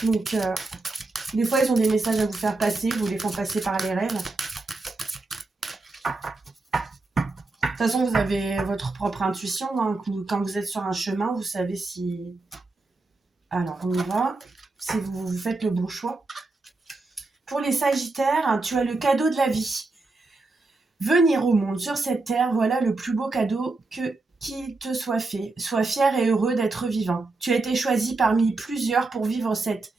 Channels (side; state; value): left; quieter; 3.4 dB